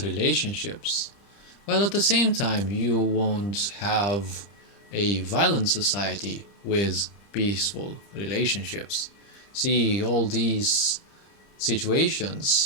relationships, while at the same time you won't have a violent society with peaceful relationships. See, all these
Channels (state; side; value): late; right; 30 ms